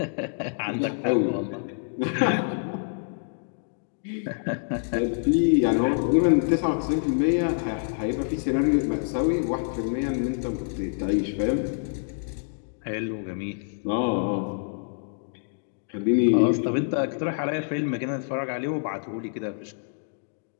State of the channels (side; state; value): right; silent; digital silence